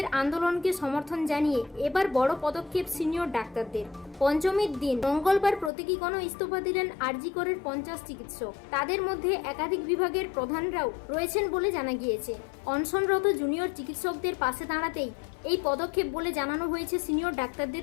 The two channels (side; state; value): right; drops out; at 5.7 s